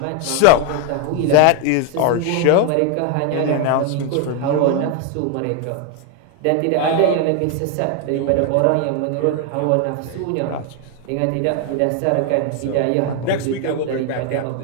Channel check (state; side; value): different; both; correlation 0.01